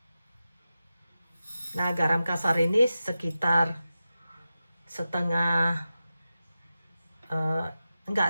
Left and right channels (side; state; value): both; inverted; correlation -0.93